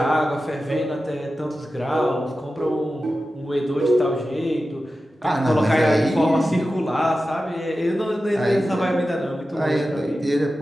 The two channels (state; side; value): normal; both; correlation 0.93